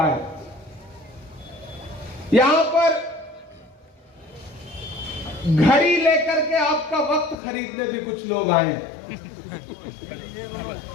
है। यहां पर घड़ी लेकर के आपका वक्त खरीदने भी कुछ लोग आए,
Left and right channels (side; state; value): right; drops out; at 7.4 s